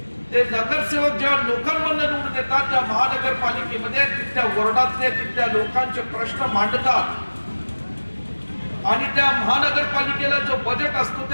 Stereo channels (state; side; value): inverted; both; correlation -1.00